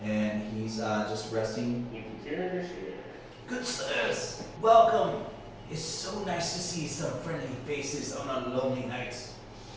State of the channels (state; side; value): identical; both; correlation 1.00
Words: and he's just resting. You can carry this here. Good sirs, welcome. It's so nice to see some friendly faces on a lonely night.